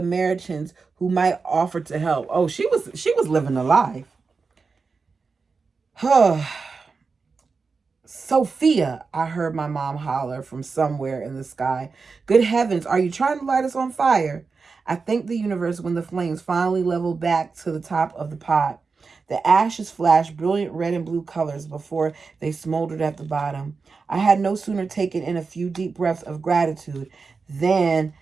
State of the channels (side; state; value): left; quieter; 4.7 dB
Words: who might offer to help. Oh, she was living a life. Sophia, I heard my mom holler from somewhere in the sky. Good heavens, are you trying to light us on fire? I thanked the universe when the flames finally leveled back to the top of the pot. The ashes flashed brilliant red and blue colors before they smoldered at the bottom. I had no sooner taken in a few deep breaths of gratitude than